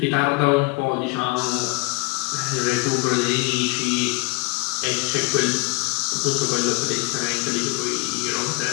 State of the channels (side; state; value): right; quieter; 25.0 dB